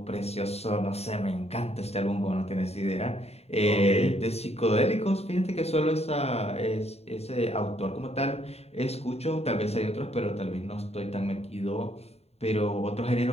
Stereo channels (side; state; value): right; late; 0.30 ms